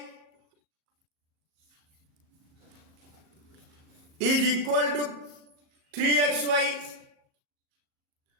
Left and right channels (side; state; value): left; late; 38 ms